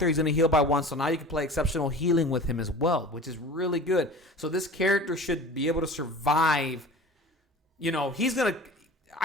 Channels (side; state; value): both; normal; correlation 0.40